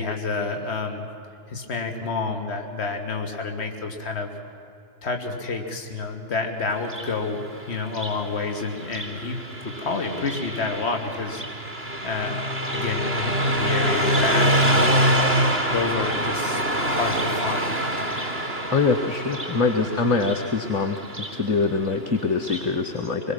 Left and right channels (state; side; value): late; left; 2.9 ms